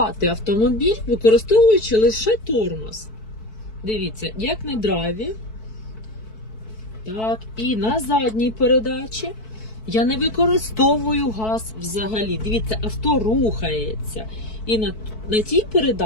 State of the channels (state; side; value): late; right; 4.6 ms